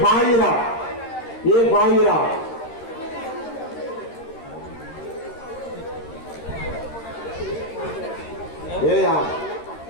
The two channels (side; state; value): right; late; 13 ms